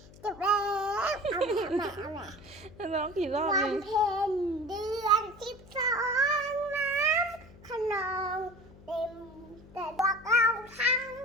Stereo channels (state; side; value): noise; left; hum, 21 dB below the sound